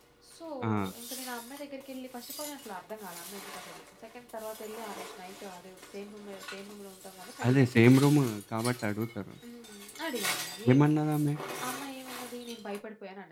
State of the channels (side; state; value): both; identical; correlation 1.00